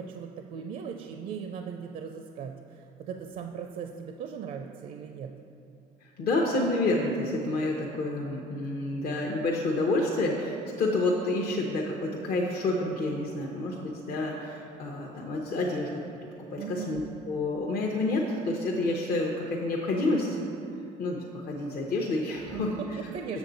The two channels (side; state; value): both; normal; correlation 0.51